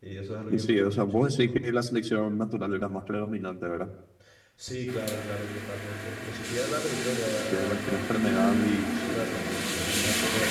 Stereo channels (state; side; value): identical; both; correlation 1.00